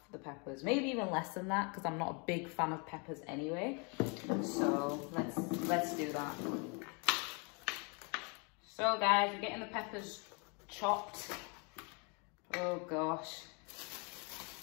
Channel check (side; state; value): right; quieter; 33.6 dB